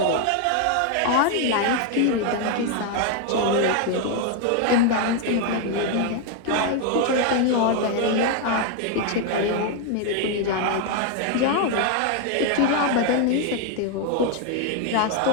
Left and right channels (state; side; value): different; both; correlation 0.01